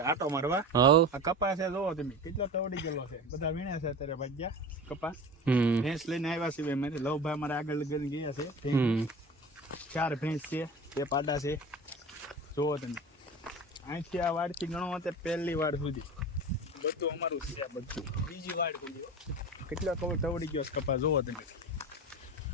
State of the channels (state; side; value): normal; both; correlation 0.33